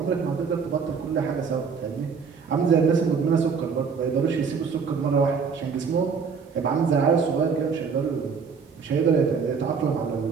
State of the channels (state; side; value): quieter; left; 5.8 dB